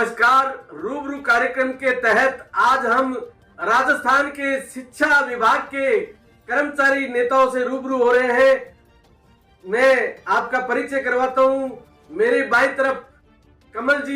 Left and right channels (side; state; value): both; identical; correlation 1.00